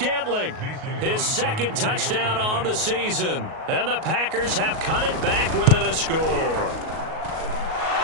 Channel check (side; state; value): left; late; 38 ms